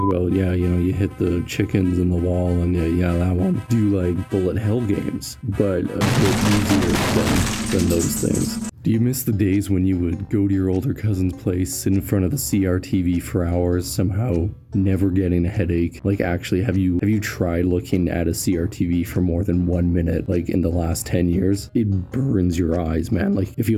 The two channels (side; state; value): both; identical; correlation 1.00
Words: about, yeah, you hit the chickens in the wall and yeah, that one. Do you like bullet hell games? But a bit easier than those things. Do you miss the days when you would go to your older cousin's place, sit in front of the CRTV for hours, somehow never getting a headache? Like, actually, have you tried looking at a CRTV for more than 1 minute, like in the last 10 years? It burns your eyes, man. Like, it